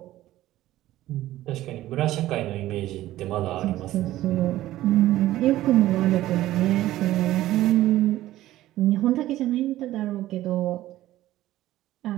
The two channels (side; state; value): left; quieter; 15.0 dB